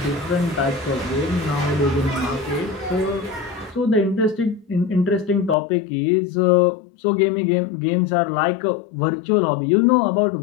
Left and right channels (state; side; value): drops out; right; at 5.6 s